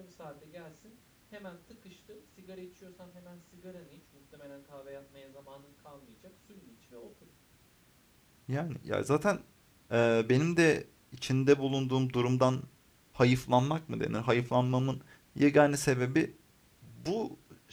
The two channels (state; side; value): identical; both; correlation 1.00